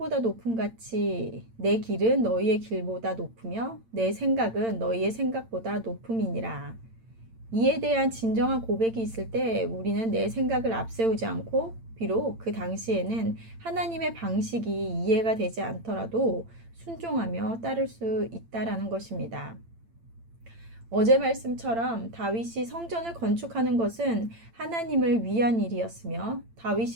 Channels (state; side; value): late; left; 8.8 ms